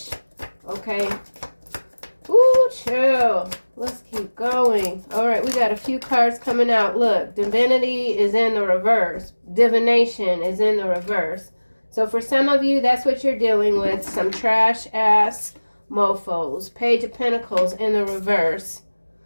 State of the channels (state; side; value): inverted; both; correlation -1.00